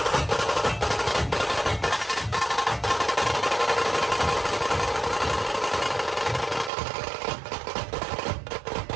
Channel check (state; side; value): drops out; left; at 6.7 s